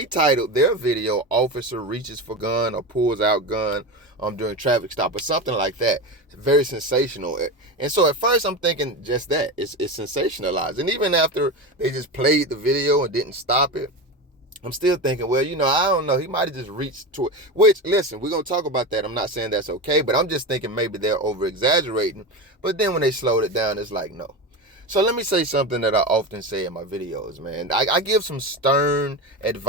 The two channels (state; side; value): normal; both; correlation 0.22